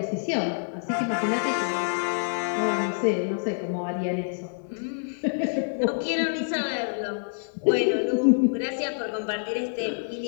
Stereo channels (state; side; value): silent; right; digital silence